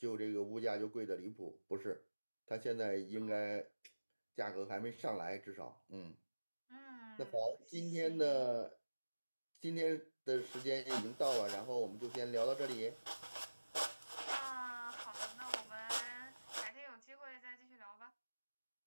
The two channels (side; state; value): both; inverted; correlation -1.00